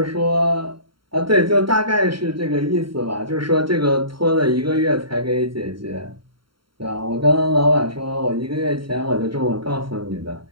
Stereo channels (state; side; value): late; left; 0.73 ms